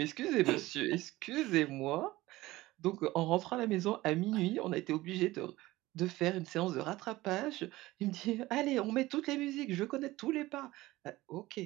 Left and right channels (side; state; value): left; quieter; 18.2 dB